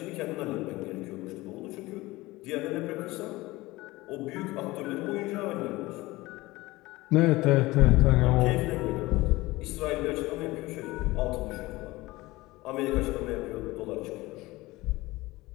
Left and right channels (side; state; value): right; quieter; 19.9 dB